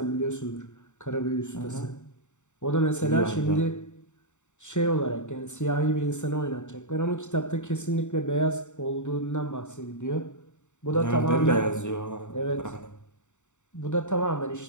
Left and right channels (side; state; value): right; late; 0.84 ms